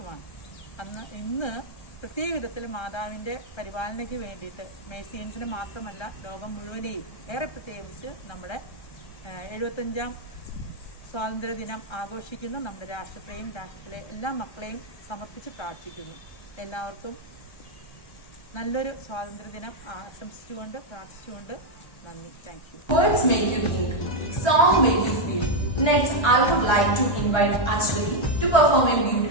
ഇന്ന് പ്രത്യേക വിധത്തിൽ മാതാവിൻ്റെ പരിപാലനയ്ക്ക് വേണ്ടിയിട്ട് മേഴ്സിയൻസിന് മാത്രമല്ല ലോകം മുഴുവനെയും ഏറെ പ്രത്യേകിച്ച് നമ്മുടെ 75ാം സ്വാതന്ത്ര്യ ദിനം ആഘോഷിക്കുന്ന നമ്മുടെ രാഷ്ട്രത്തെയും രാഷ്ട്രത്തിലെ എല്ലാ മക്കളെയും സമർപ്പിച്ച് പ്രാർത്ഥിക്കുന്നു. എല്ലാവർക്കും നല്ലൊരു സ്വാതന്ത്ര്യ ദിനം ആശംസിച്ചുകൊണ്ട് പ്രാർത്ഥിച്ചുകൊണ്ട് നന്ദി. Thank you. Words make you think, song make you feel. Next, I would like to invite Ashwari to perform a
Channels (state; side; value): late; right; 1.3 ms